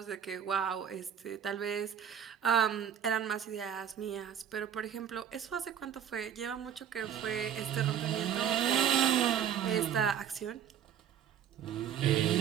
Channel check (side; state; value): left; quieter; 9.2 dB